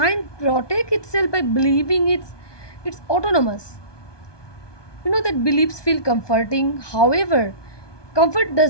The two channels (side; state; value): right; late; 1.2 ms